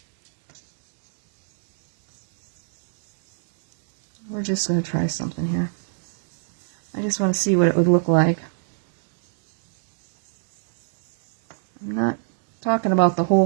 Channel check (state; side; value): silent; left; 65 dB below the other